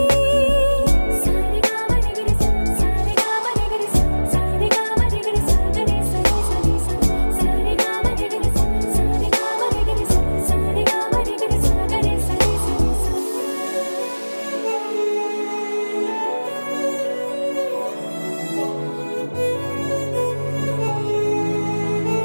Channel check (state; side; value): inverted; both; correlation -1.00